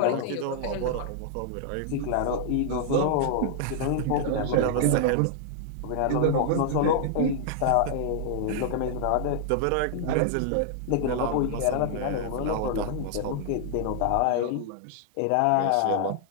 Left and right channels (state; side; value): different; both; correlation -0.01